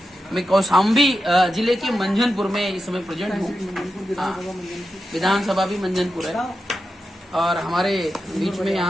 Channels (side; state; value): both; normal; correlation 0.90